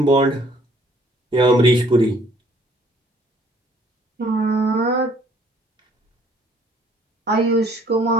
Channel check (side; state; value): both; normal; correlation 0.60